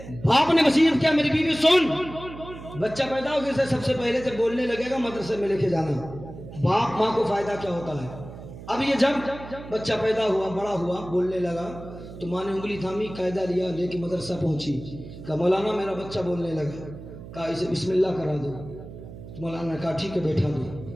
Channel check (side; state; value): right; noise; hum, 14 dB below the sound